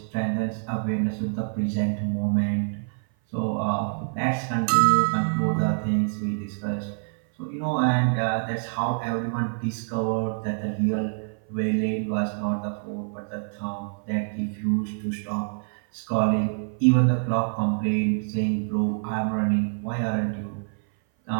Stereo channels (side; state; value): left; silent; 56 dB below the other